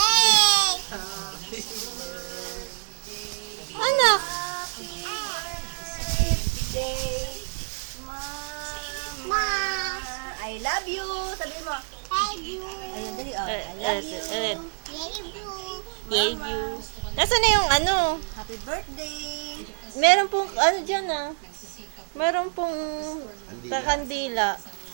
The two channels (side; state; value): left; silent; 56 dB below the other